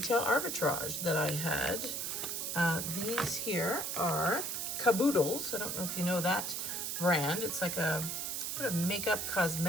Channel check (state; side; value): noise; right; hiss, 2 dB below the sound